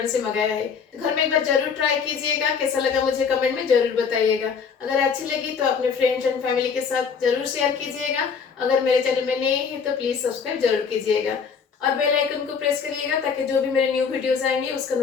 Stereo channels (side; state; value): right; quieter; 6.1 dB